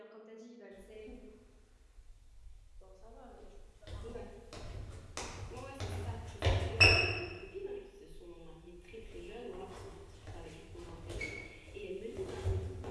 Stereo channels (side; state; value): both; identical; correlation 1.00